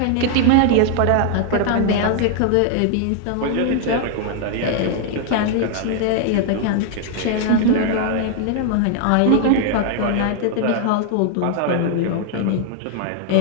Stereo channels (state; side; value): different; both; correlation 0.00